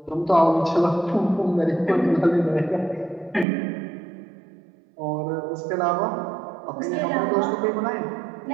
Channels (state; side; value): drops out; left; at 3.5 s